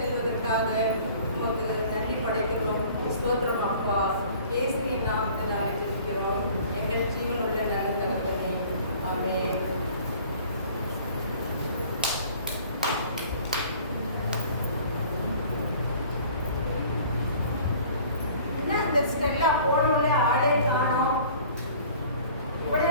உமக்கு நன்றி படைக்கிறோம். ஸ்தோத்திரம் அப்பா. இயேசுவின் நாமத்தினாலே ஜெபிக்கிறோம் எங்கள் ஜீவனுள்ள நல்ல தகப்பனே. ஆமென். என்ன அந்த ஸ்டெல்லா போனோடனே ஆளே காணோம்,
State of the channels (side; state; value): both; inverted; correlation -0.50